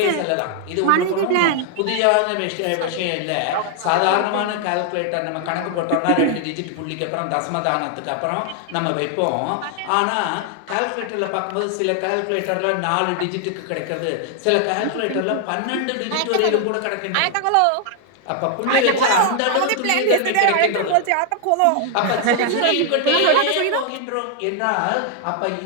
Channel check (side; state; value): both; different; correlation 0.00